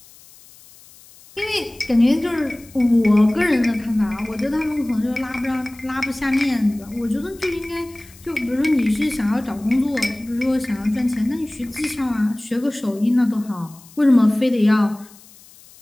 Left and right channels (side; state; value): left; noise; hiss, 24 dB below the sound